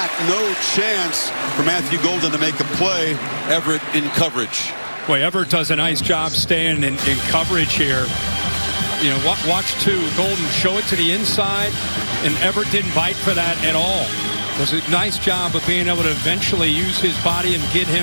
No chance for Matthew Golden to make a play. Everett in coverage. Boy, Everett does a nice job staying in coverage here. You know, watch too. Golden show it to the inside, and Everett didn't bite for that at all. It was a nice job of being able to eventually use his body and get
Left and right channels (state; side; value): inverted; both; correlation -1.00